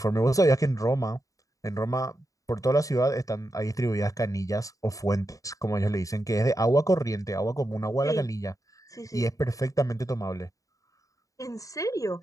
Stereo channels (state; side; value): late; right; 0.16 ms